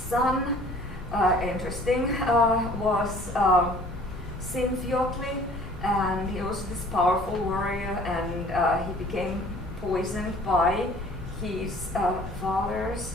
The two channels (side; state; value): both; normal; correlation 0.51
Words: interesting, was Sinfjotli, and he was this powerful warrior, and he became poisoned by his father's